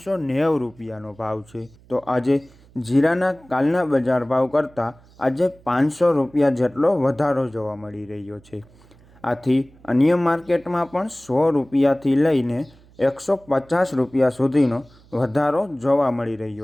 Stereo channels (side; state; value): right; noise; hum, 27 dB below the sound